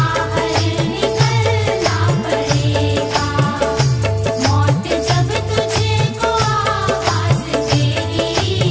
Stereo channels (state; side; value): identical; both; correlation 1.00